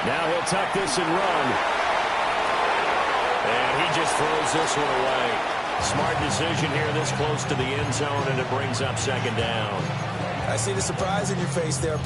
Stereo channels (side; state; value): both; identical; correlation 1.00